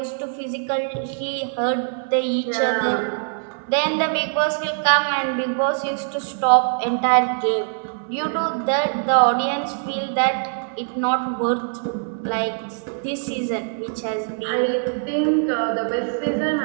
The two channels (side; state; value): left; silent; 64 dB below the other